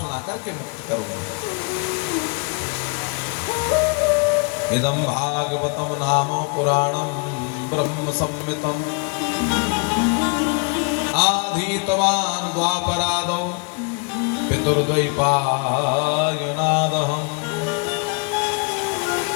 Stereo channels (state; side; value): quieter; right; 34.5 dB